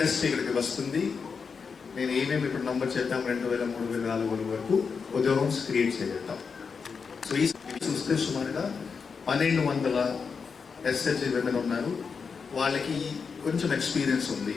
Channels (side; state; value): right; quieter; 5.6 dB